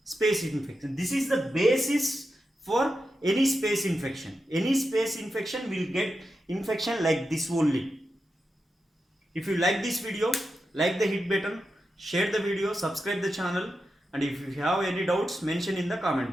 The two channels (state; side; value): normal; both; correlation 0.88